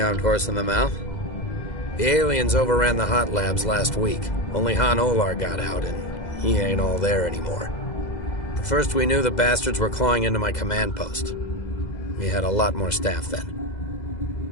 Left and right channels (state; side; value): late; right; 2.0 ms